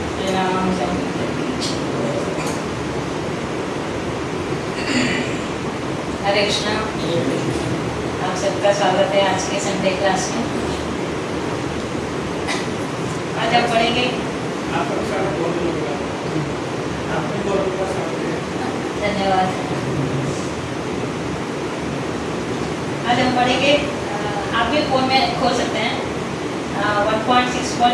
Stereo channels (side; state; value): both; identical; correlation 1.00